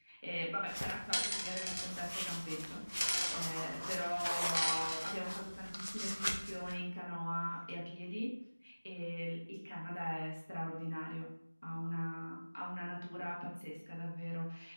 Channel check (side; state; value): both; inverted; correlation -1.00